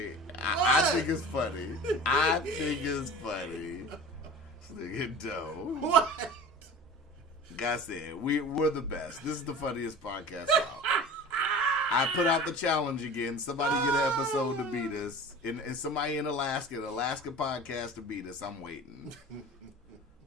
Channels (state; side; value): normal; both; correlation 0.37